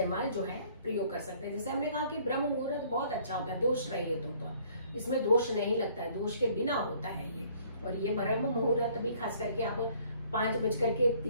जो है प्रयोग कर सकते हैं। जैसे हमने कहा कि ब्रह्म मुहूर्त बहुत अच्छा होता है, दोष रहित होता है, इसमें दोष नहीं लगता है, दोष के बिना होता है ये। और ये ब्रह्म मुहूर्त भी खास करके आप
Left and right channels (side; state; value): both; inverted; correlation -0.59